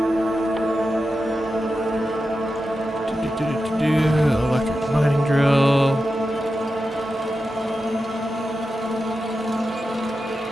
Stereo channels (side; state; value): both; normal; correlation 0.91